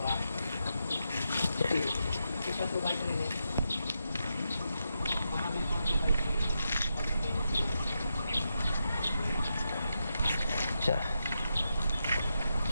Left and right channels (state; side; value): inverted; both; correlation -0.85